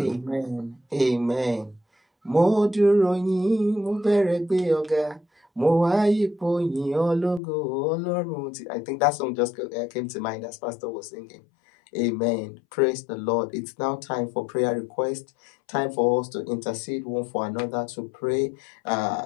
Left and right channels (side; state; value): right; drops out; at 7.4 s